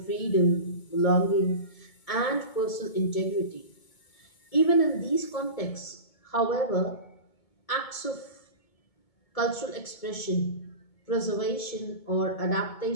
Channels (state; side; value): late; right; 1.7 ms